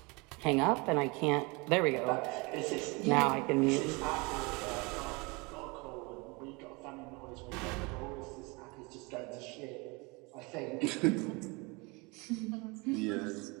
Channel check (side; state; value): left; quieter; 27.4 dB